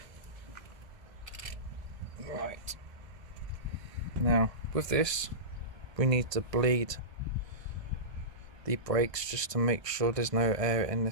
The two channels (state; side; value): late; left; 1.5 ms